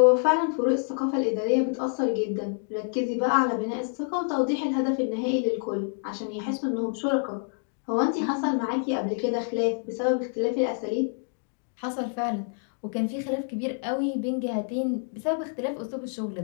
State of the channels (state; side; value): silent; right; 60 dB below the other